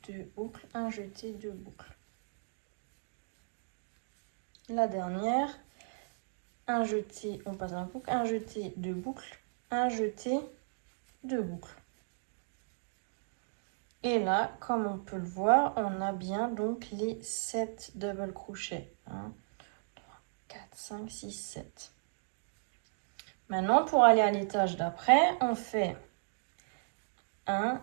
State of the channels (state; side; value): silent; left; digital silence